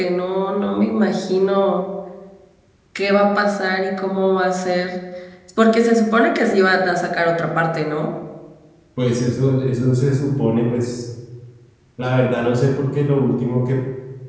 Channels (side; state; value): both; identical; correlation 1.00